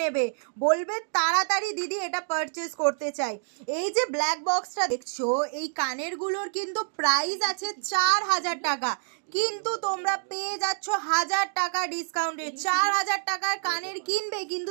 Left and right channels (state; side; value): silent; left; digital silence